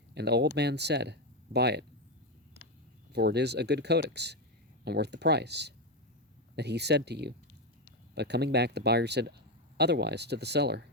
and the old man said, "Buy it, for it is a good codex, and worth the price that he said to you." But coming back, the buyer said otherwise to the seller,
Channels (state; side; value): normal; both; correlation 0.09